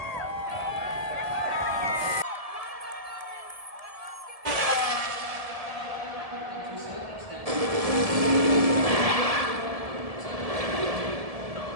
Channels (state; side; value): late; left; 1.7 ms